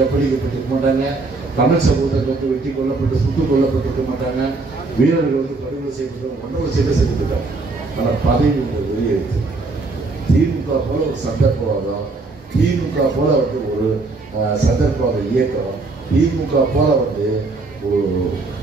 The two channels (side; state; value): left; quieter; 3.6 dB